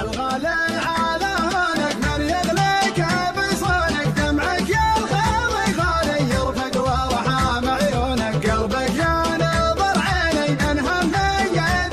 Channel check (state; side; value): identical; both; correlation 1.00